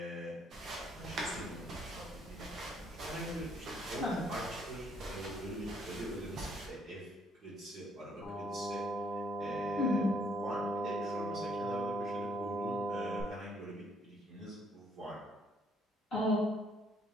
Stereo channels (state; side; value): normal; both; correlation 0.67